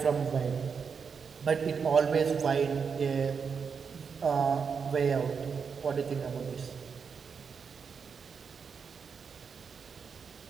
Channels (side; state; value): left; quieter; 6.0 dB